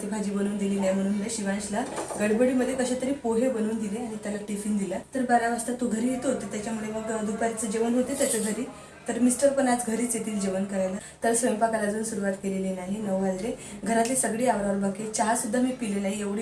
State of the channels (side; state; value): both; identical; correlation 1.00